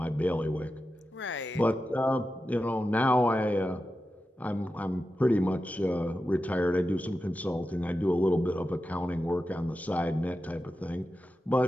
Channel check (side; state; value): both; normal; correlation 0.91